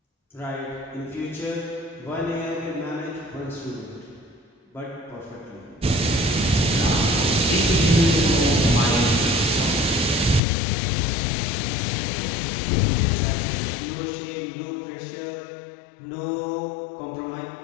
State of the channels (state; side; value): drops out; right; at 10.4 s